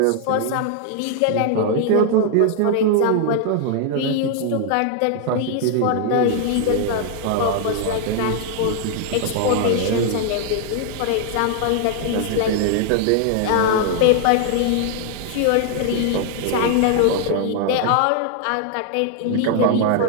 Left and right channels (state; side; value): different; both; correlation 0.00